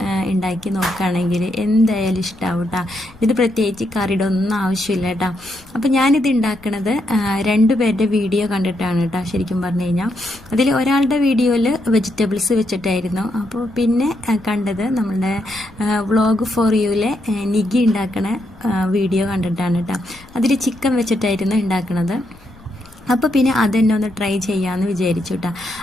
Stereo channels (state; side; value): noise; left; rumble, 26 dB below the sound